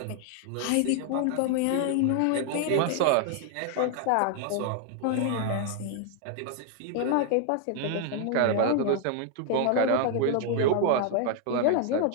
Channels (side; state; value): both; different; correlation 0.00